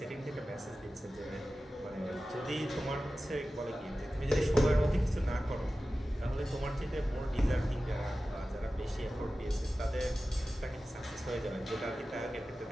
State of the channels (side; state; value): both; normal; correlation 0.95